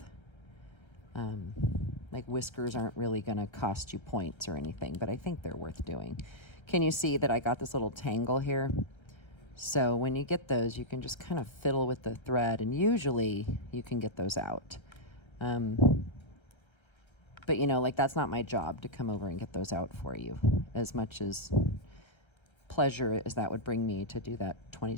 Like, whiskers aren't really gonna cost you points or anything, but I think they're worth doing. Can you see that I got this little tangle here? So when you get those, you can just kind of fiddle with the thread, and usually you can get those out. But, you know, like, that's not my job to come over and get those out for you, as much as pleasure as that would bring me to do that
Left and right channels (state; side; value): late; right; 1.3 ms